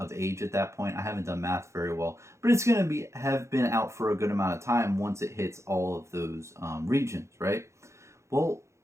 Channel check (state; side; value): late; left; 0.14 ms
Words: age at that point. I haven't done math very well, but it's going to have been out for a good amount of time once it hits all of those regions, right? Well,